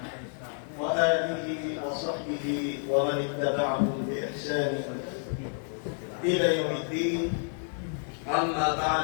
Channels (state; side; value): silent; right; 58 dB below the other